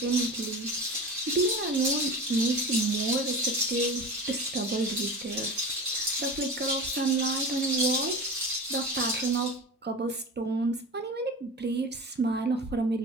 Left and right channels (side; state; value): both; normal; correlation 0.31